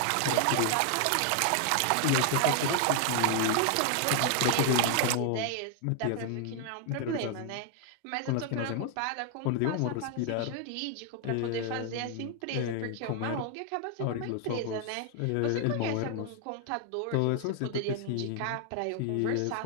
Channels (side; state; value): both; different; correlation 0.00